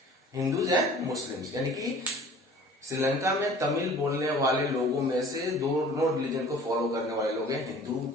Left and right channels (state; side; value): normal; both; correlation 0.47